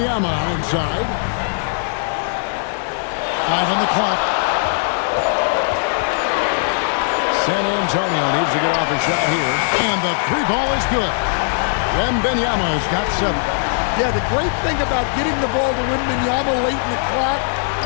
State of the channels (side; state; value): right; silent; digital silence